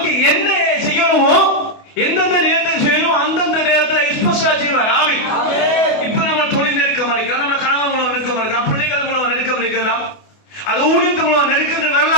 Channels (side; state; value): right; late; 28 ms